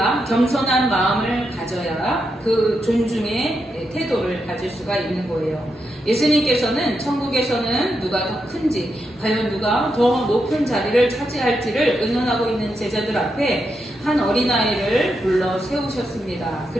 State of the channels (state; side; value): normal; both; correlation 0.84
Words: 겸손한 마음을 가져야 그 존중의 태도를 가질 수가 있는 거예요. 예수님께서는 천국에서는 누가 더 큰지, 과연 누가 더 높은 자리를 차지할지를 의논하고 있는 제자들 앞에 한 어린아이를 불러 세우셨습니다.